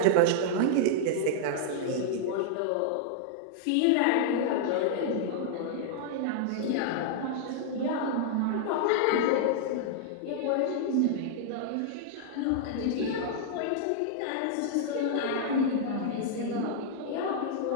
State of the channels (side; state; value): both; different; correlation -0.01